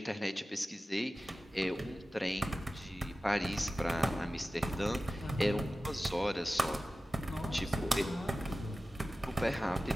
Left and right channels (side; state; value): both; normal; correlation 0.95